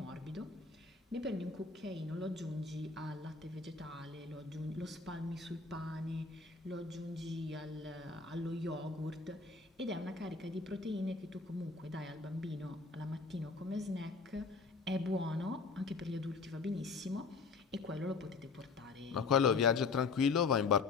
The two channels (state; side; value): quieter; right; 4.5 dB